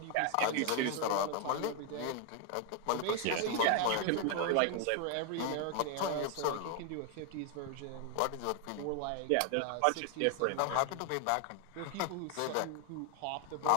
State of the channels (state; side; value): different; both; correlation 0.00